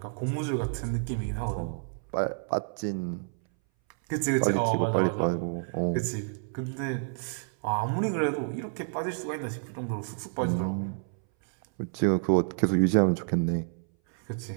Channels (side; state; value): left; silent; 58 dB below the other